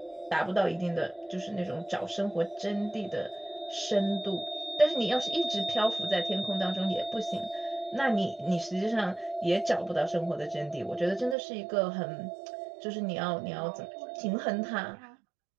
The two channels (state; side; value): drops out; left; at 11.4 s